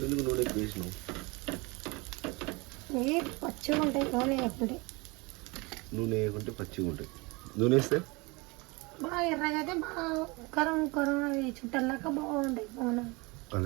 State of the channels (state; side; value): quieter; left; 26.2 dB